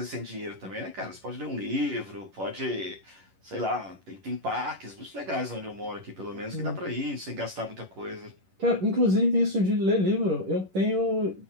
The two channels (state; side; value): late; left; 11 ms